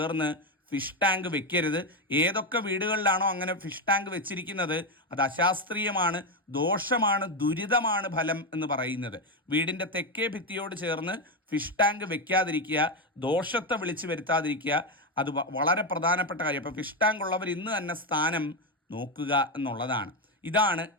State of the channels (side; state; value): both; normal; correlation 0.09